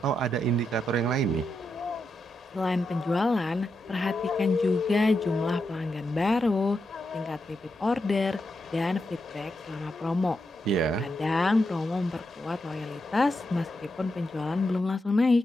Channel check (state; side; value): normal; both; correlation 0.85